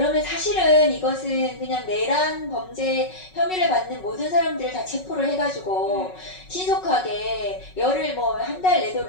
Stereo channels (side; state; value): right; late; 5.4 ms